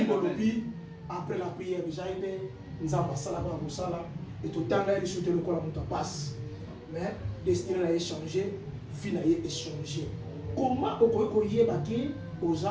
après la prière déjà ebe nzambe asalaka ya kosala et totanga ye liso te lokola moto apasi mais destiné na ye changer vie na ye échanger comment okoki koyeba ke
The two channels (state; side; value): identical; both; correlation 1.00